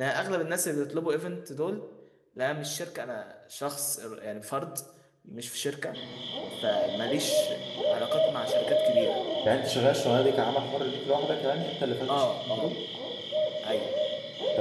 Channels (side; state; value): both; identical; correlation 1.00